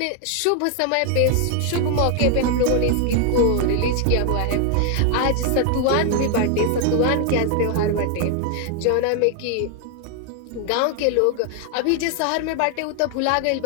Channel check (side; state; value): both; different; correlation 0.00